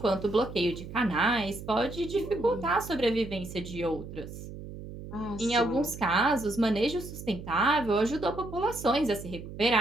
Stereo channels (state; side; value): noise; right; hum, 12 dB below the sound